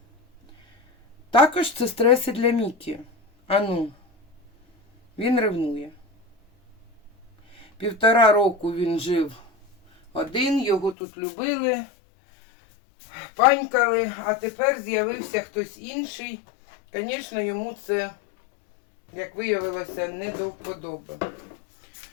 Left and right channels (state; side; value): drops out; right; at 11.0 s